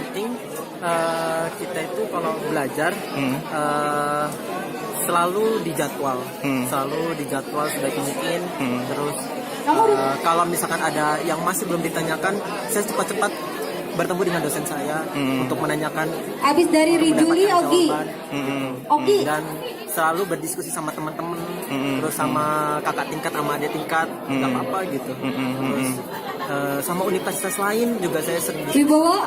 kita itu kalau belajar selalu dijadwal, sebaik mungkin. Terus kalau misalkan ada yang masih belum ditanyakan, saya cepat-cepat bertemu dengan dosen saya untuk menanyakan. Abis dari Rijuli, mendapatkan Ogi. jawaban. Ogi. Dan selalu berdiskusi sama teman-teman, terus sama kakak tingkat, sama adik tingkat, nggak apa-apa gitu. Terus sama universitas lain juga saya sering diskusi Wibowo?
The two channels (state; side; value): identical; both; correlation 1.00